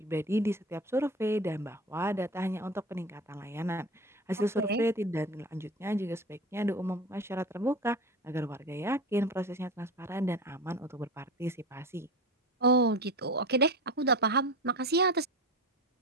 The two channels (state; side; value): normal; both; correlation 0.30